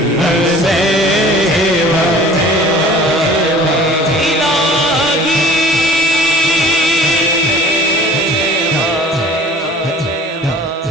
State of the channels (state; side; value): normal; both; correlation 0.47